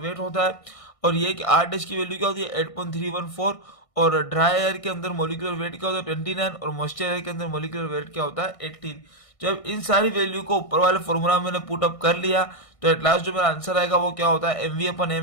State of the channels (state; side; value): late; right; 1.6 ms